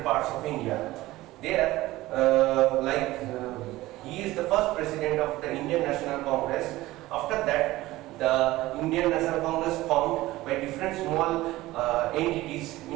parts of India. There, he is the first president of the Indian National Congress. After that, the Indian National Congress formed by different small entities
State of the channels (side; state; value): left; quieter; 17.7 dB